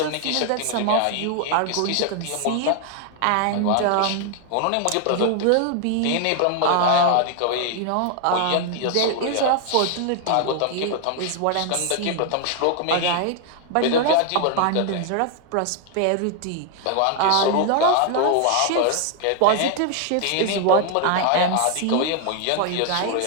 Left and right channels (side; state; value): both; different; correlation 0.00